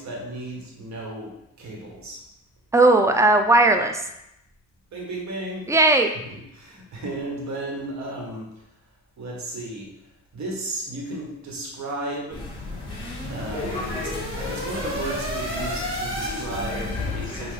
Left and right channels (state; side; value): normal; both; correlation 0.34